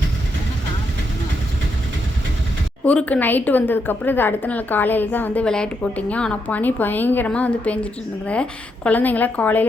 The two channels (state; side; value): normal; both; correlation 0.80